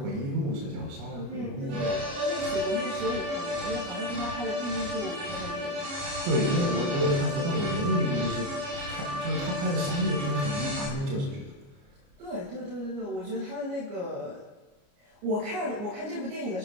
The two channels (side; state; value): left; late; 29 ms